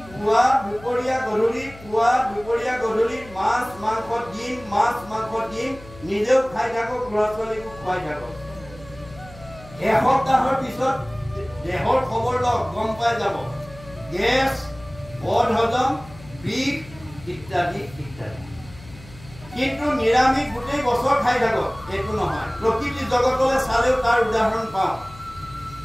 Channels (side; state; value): left; noise; hum, 20 dB below the sound